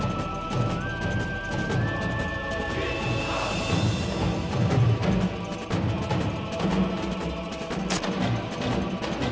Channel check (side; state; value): both; identical; correlation 1.00